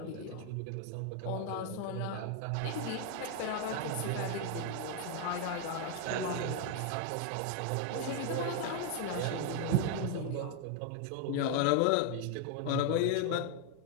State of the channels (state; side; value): different; both; correlation 0.00